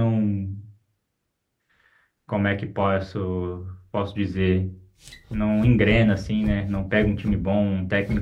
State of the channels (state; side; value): identical; both; correlation 1.00